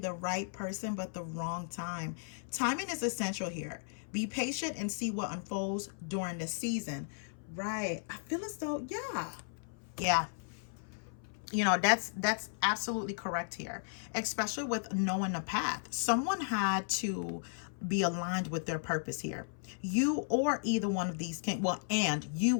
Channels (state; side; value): silent; right; 54 dB below the other